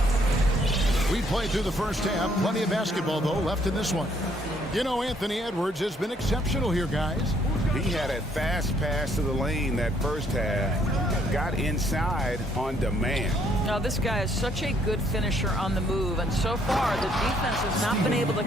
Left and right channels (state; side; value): normal; both; correlation 0.67